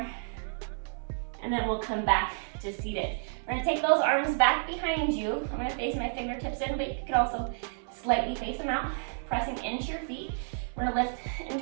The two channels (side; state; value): left; silent; 57 dB below the other